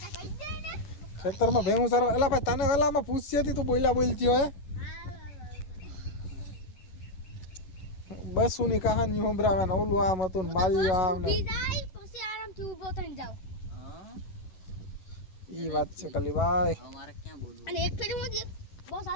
ખેતરમાં ભેહું સારવા એલા ભાઈ તને વેલામાં પૂછતી હતી તું બોલ્યા બોલતી હોય બસ ની કહાની સંભળાવે ને ઓલું આમ હતું ને માલ્યું આમ ને પછી આરામથી ઊભો થઈને જાવ ઈ વાત છે કલીભાઈ અમારે ક્યાં બોલવું અને એક ફેરી હું બસ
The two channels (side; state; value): right; late; 11 ms